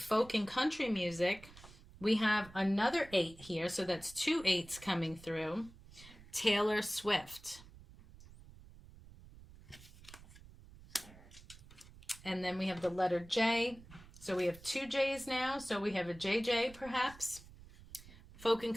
and country music. We have another 8 here, so that's 2 8s coming through. Taylor Swift. And then we have the letter J. So we have 2 J's now. So we have a JJ perhaps. Folk and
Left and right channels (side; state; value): right; noise; rumble, 20 dB below the sound